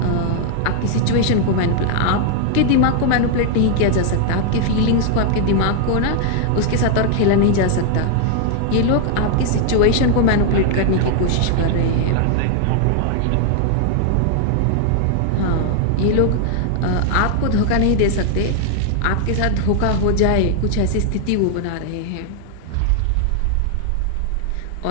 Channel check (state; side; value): different; both; correlation 0.00